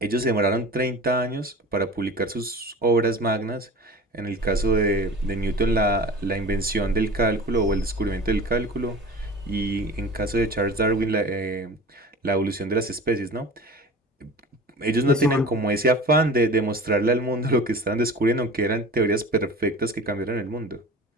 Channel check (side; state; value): both; normal; correlation 0.38